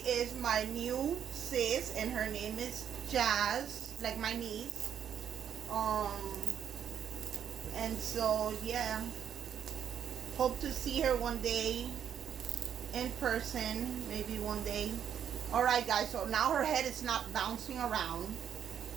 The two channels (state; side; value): quieter; left; 8.8 dB